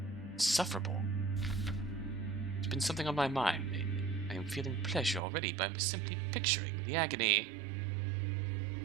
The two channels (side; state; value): left; drops out; at 5.2 s